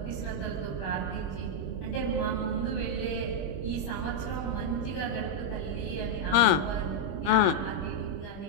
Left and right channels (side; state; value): right; late; 21 ms